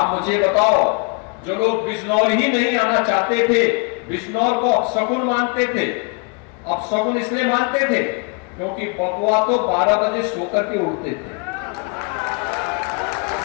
मुझे बताओ, जो लोग बिजनौर ही नहीं आना चाहते थे, बिजनौर को अपशकुन मानते थे, अपशकुन इसलिए मानते थे क्योंकि बबुआ तो 12 बजे सोकर के उठते थे,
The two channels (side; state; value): right; quieter; 33.4 dB